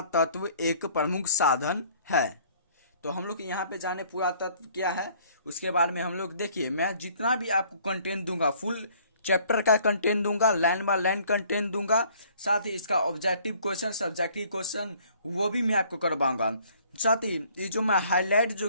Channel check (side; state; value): both; inverted; correlation -0.58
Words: एक प्रमुख साधन है। तो हम लोग यहाँ पे जाने पुरातत्व क्या है उसके बारे में हम लोग देखिए। मैं जितना भी आपको कंटेंट दूंगा, फुल चैप्टर का कंटेंट दूंगा, लाइन बाय लाइन कंटेंट दूंगा, साथ ही इसका ऑब्जेक्टिव क्वेश्चन, सब्जेक्टिव क्वेश्चन वो भी मैं आपको करवाऊंगा। साथ ही ये जो मैं हाईलाइट जो